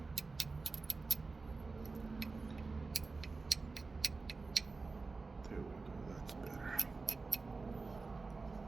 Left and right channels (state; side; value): quieter; left; 3.9 dB